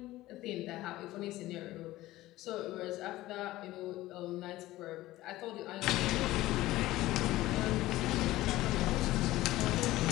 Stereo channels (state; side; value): quieter; right; 16.8 dB